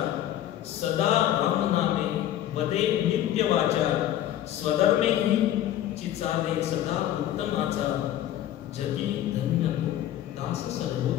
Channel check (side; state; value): right; quieter; 12.2 dB